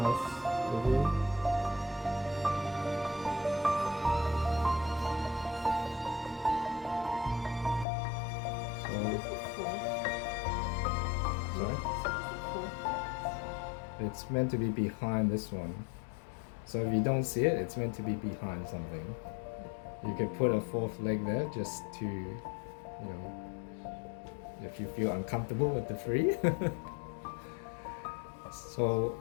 It's meant to be behind this one. So if you don't see it, it's meant to be behind something. You could put a fourth leg there just to, if you feel uncomfortable with the three. So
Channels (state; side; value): drops out; right; at 7.9 s